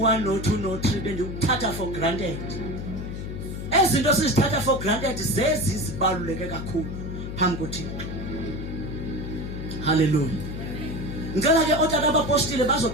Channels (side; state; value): left; noise; hum, 7 dB below the sound